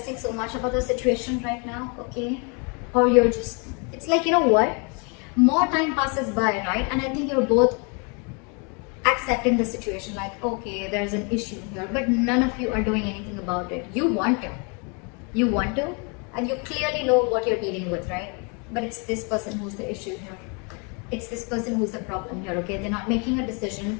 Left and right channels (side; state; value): right; quieter; 34.4 dB